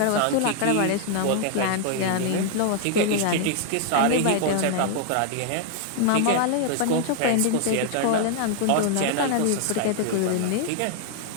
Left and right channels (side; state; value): both; different; correlation 0.00